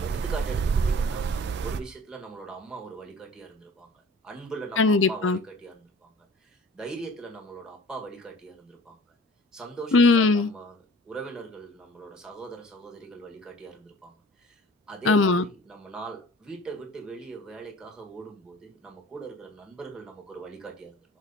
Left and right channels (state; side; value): normal; both; correlation 0.47